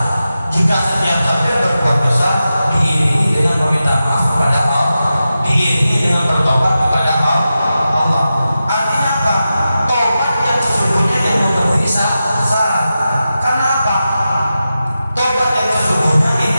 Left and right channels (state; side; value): inverted; both; correlation -0.92